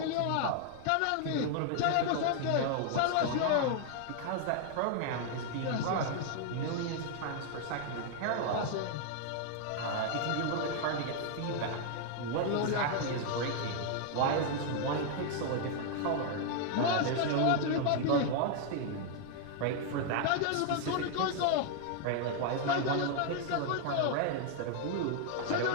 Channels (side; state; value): both; different; correlation 0.00